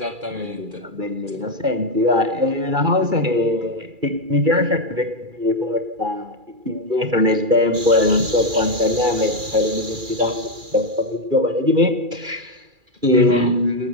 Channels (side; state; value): left; late; 2.4 ms